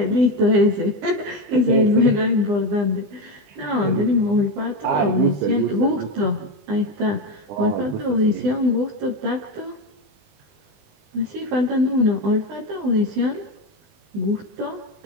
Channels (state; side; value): late; left; 20 ms